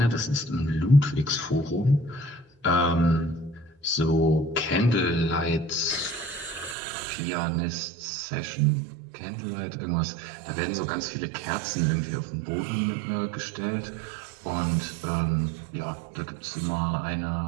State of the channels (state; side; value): drops out; left; at 6.8 s